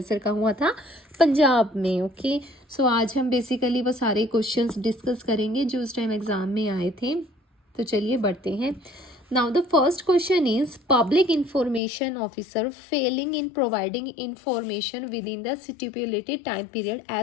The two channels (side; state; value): right; drops out; at 11.8 s